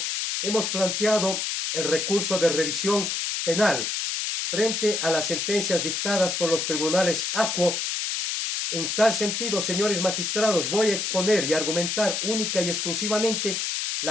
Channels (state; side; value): noise; left; hiss, 1 dB below the sound